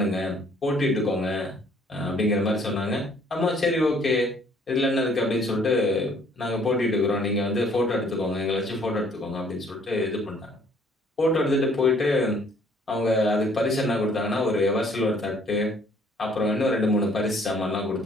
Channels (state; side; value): normal; both; correlation 0.61